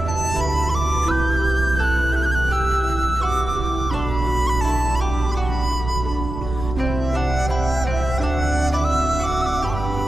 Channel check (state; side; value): noise; right; rumble, 7 dB below the sound